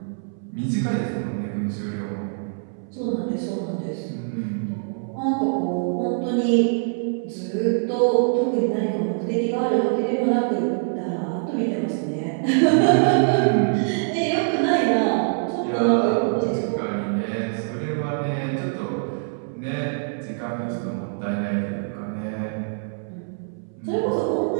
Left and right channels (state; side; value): silent; left; 63 dB below the other